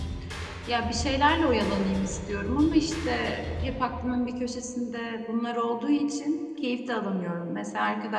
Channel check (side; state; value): both; identical; correlation 1.00